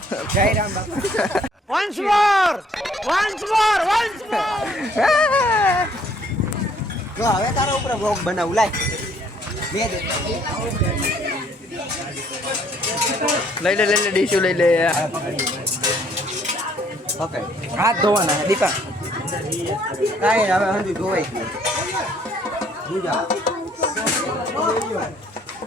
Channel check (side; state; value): both; normal; correlation 0.63